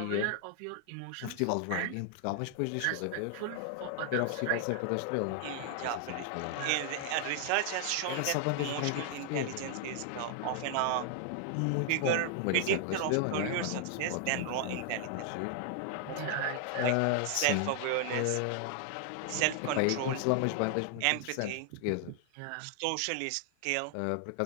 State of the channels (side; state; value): both; different; correlation 0.00